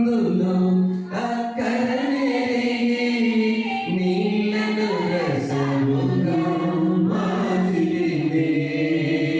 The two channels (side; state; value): both; identical; correlation 1.00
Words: అక్కడనే నీళ్ళను రసముగా మార్చితివే.